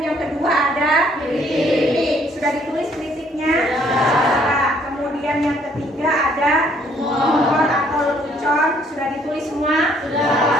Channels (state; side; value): normal; both; correlation 0.64